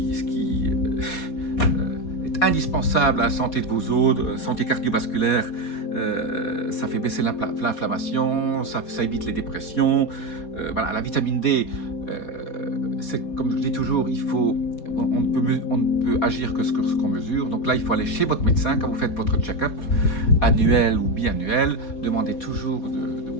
est indispensable à la santé de vos os, santé cardiovasculaire. Ça fait baisser l'inflammation, ça évite les dépressions. Voilà, la vitamine D, c'est comme je dis toujours, on ne peut agir que ce qu'on mesure. Donc là, il faut aller chez votre médecin quand vous faites votre check-up annuel ou biannuel. Demandez toujours de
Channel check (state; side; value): late; right; 4.2 ms